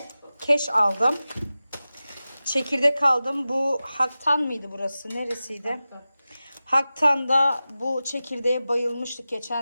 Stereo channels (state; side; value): inverted; both; correlation -0.95